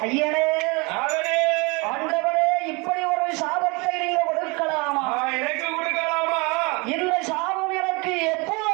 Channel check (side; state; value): left; quieter; 28.3 dB